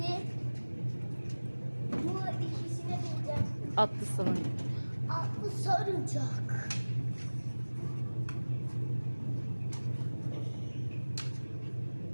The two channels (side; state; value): both; inverted; correlation -1.00